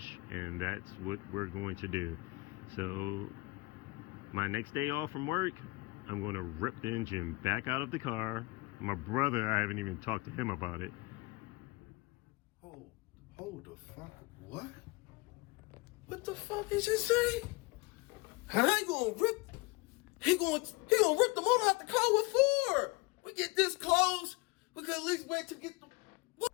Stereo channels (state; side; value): quieter; right; 23.3 dB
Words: and that's what we're going to do. So my next day off from work, I'm going to rip the engine back out of the car. My brother, I haven't even talked to him about it. Hold the fuck? What? What the fuck is he saying? And I gonna rip, he gonna rip the motor out the car. What for? We get this close, we could at least wait to get the, what?